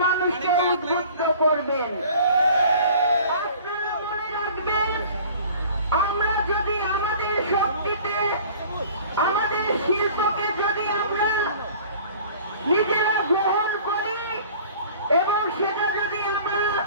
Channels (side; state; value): both; inverted; correlation -0.47